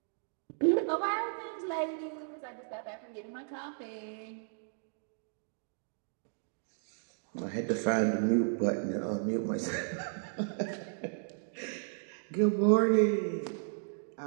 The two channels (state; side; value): silent; left; digital silence